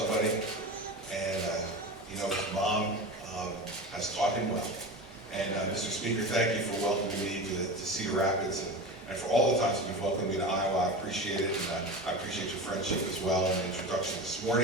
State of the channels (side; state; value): both; normal; correlation 0.28